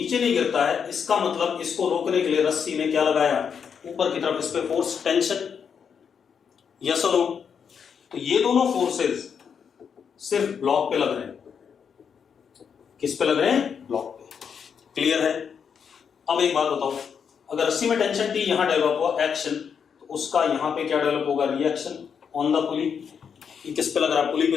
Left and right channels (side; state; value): right; quieter; 7.0 dB